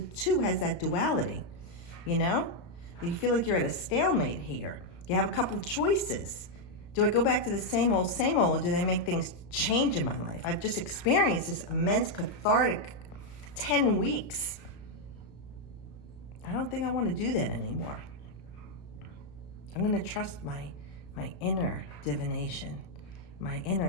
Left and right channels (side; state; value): right; late; 34 ms